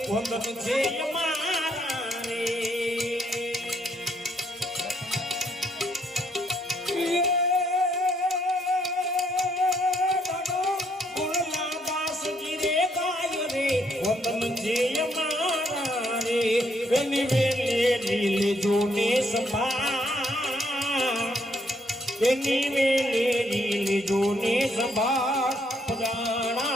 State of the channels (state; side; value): normal; both; correlation 0.71